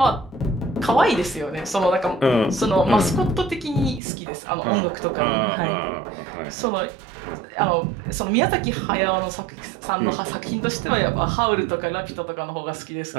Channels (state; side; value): drops out; left; at 4.0 s